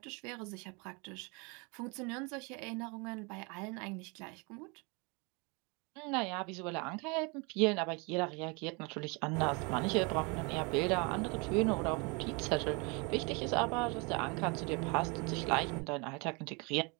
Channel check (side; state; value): left; quieter; 30.6 dB